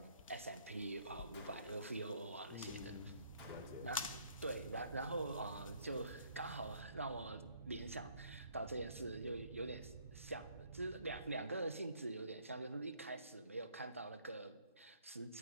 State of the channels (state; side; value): inverted; both; correlation -0.62